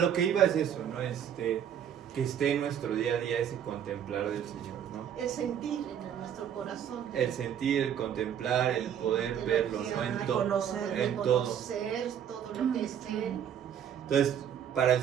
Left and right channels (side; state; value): left; quieter; 9.1 dB